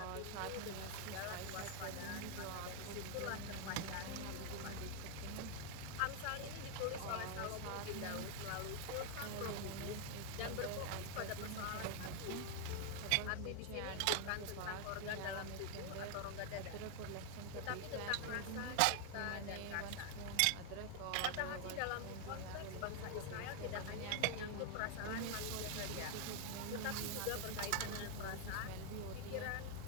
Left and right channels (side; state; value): both; different; correlation 0.00